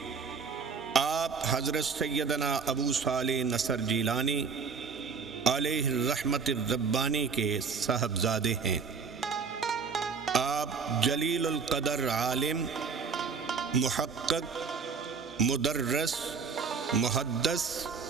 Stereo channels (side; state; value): left; quieter; 5.5 dB